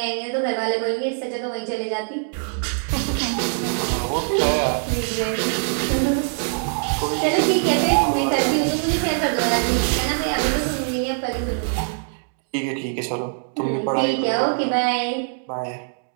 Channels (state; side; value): silent; left; digital silence